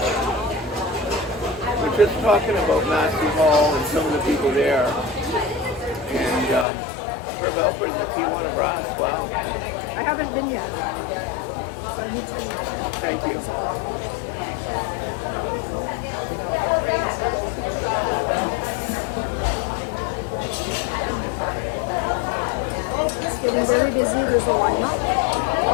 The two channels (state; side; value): drops out; right; at 6.7 s